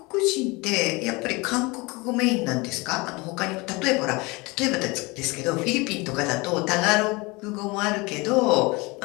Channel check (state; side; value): quieter; right; 25.1 dB